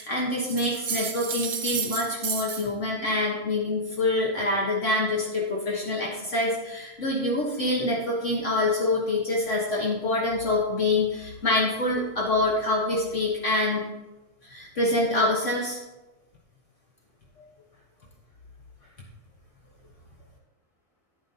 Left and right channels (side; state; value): left; late; 1.6 ms